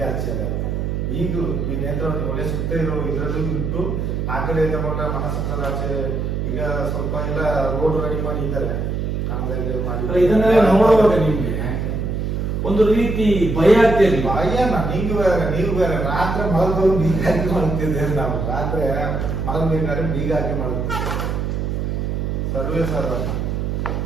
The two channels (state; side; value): noise; right; hum, 1 dB below the sound